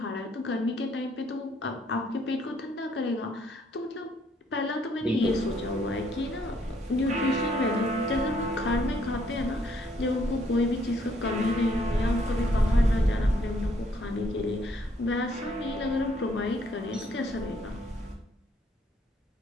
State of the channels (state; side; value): normal; both; correlation 0.68